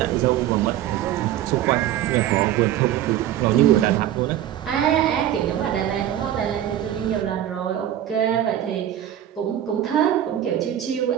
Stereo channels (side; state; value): left; quieter; 11.7 dB